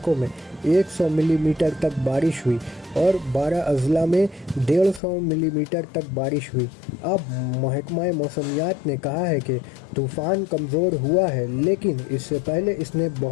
में 100 मिलीमीटर तक बारिश हुई और 12 अज़ला में 150 मिलीमीटर तक बारिश हुई। अब महकमा मौसमियात ने कहा है कि तूफ़ान कमज़ोर हुआ है, लेकिन इससे पहले इसने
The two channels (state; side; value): drops out; right; at 5.0 s